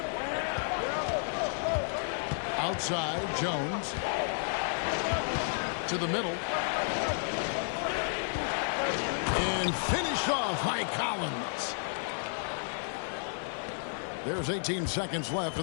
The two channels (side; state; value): right; silent; digital silence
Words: Outside, Jones. To the middle. And finish off by Collins. There's 18 seconds left